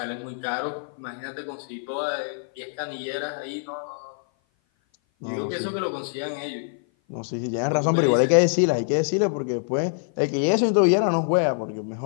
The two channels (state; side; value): silent; right; 56 dB below the other